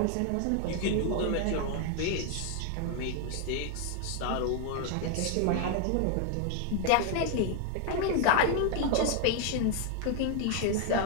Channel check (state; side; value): different; both; correlation 0.00